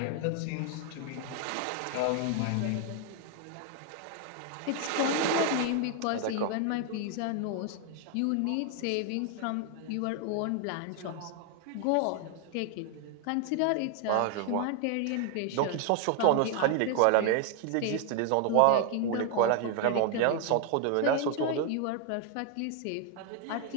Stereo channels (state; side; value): different; both; correlation 0.00